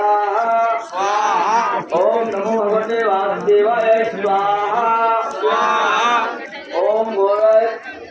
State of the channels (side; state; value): both; identical; correlation 1.00